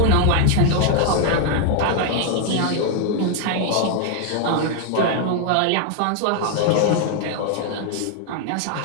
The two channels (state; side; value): different; both; correlation 0.00